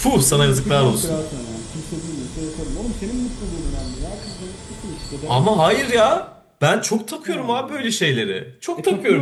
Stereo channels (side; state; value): both; identical; correlation 1.00